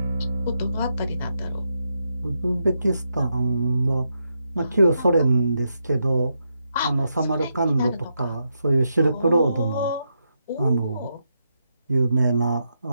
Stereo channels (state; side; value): inverted; both; correlation -0.83